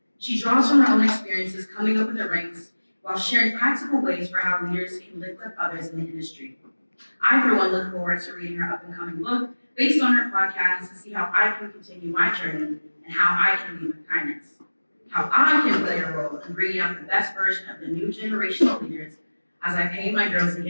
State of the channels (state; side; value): inverted; both; correlation -1.00